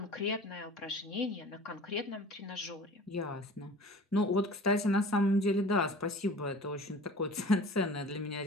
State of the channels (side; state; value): both; normal; correlation 0.42